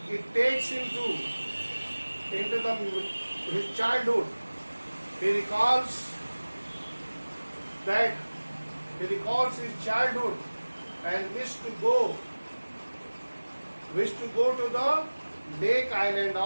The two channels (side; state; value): both; inverted; correlation -1.00